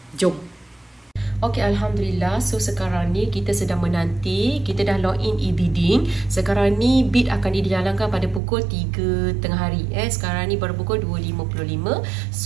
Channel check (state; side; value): drops out; left; at 8.4 s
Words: Jom. Okey, Alhamdulillah. So, sekarang ni kita sedang menanti. Kita dah login e-bidding. Sekarang ni bid akan dijalankan pada pukul 3 tengah hari. Sekarang ni baru pukul 2.55.